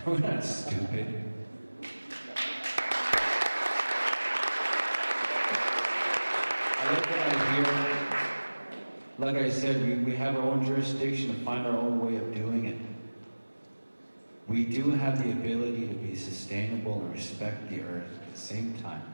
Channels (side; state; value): both; inverted; correlation -1.00